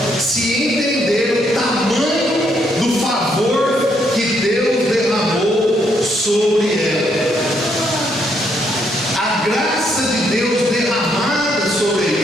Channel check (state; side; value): normal; both; correlation 0.73